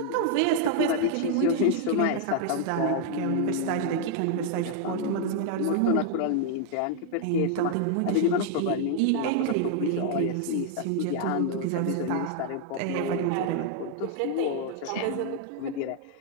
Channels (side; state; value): both; different; correlation 0.00